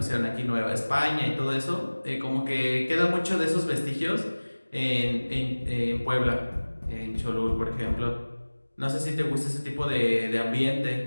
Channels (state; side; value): inverted; both; correlation -1.00